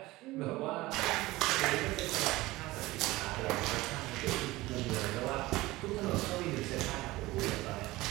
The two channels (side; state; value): left; quieter; 19.2 dB